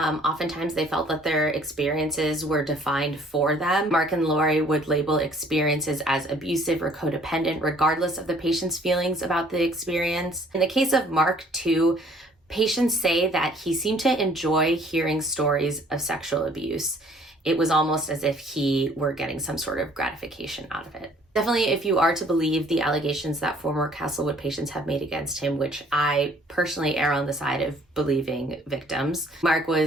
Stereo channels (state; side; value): normal; both; correlation 0.58